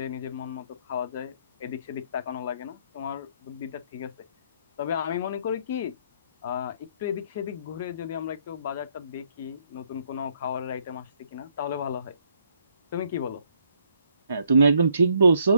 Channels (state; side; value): inverted; both; correlation -0.70